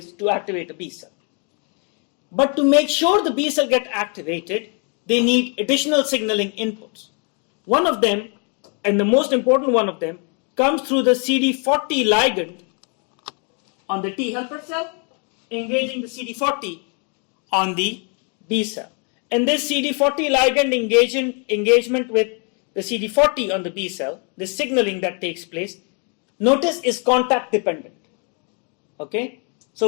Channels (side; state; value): right; quieter; 37.4 dB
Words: to activate a B cell. But to make sure the B cell get activated, they need additional signaling inputs. One of them, and the most important one of them, comes through the CD40 ligand on the T helper cell, engaging the CD40 on the B cell. And this CD40 ligand engagement with the CD40 on the B cell, the signaling that takes place, notice is contact dependent. Okay?